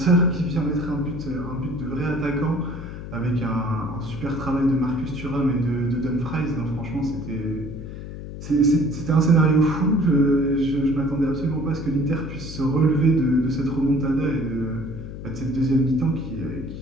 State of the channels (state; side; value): noise; left; hum, 10 dB below the sound